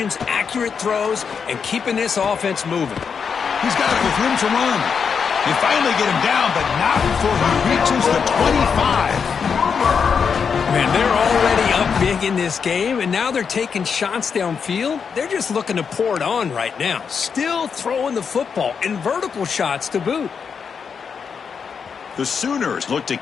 accurate throws, and keeping this offense moving. He's got it with room to run. They finally get him down, but not before he reaches the 25. Man, they're already up big in this game, and now they're taking shots downfield. They're just looking to pour it on right now. Still throwing the football, and vertical shots to boot. The Sooners look to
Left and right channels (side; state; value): right; quieter; 6.3 dB